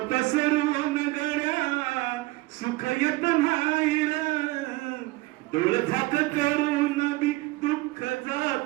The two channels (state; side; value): quieter; left; 21.1 dB